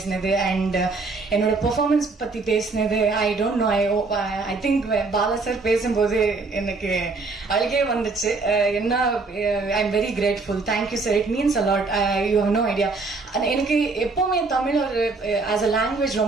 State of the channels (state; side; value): quieter; left; 3.9 dB